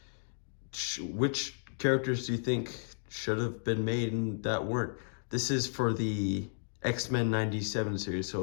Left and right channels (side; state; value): right; silent; digital silence